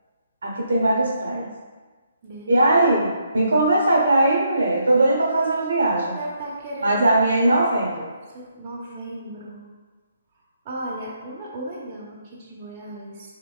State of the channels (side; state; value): both; inverted; correlation -0.76